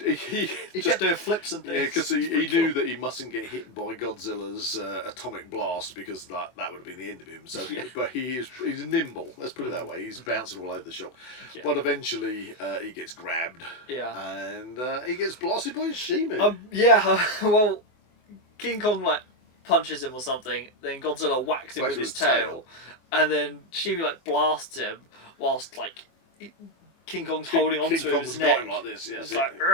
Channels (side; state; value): right; late; 24 ms